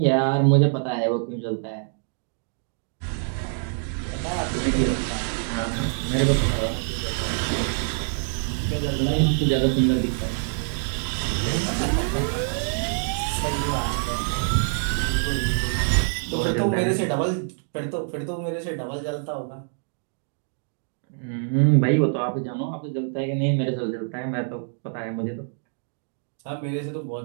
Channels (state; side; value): silent; left; digital silence